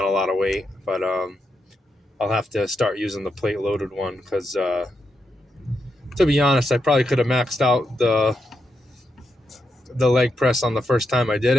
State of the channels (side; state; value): both; normal; correlation 0.84